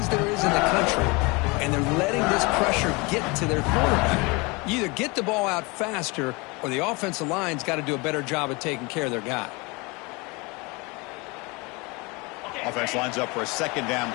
there is in the country, and they're letting this pressure get to their quarterback. You either get the ball out faster, or the offensive line's got to do a better job of taking care of their guy. Offense lines up for a 2nd down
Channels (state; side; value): quieter; right; 26.9 dB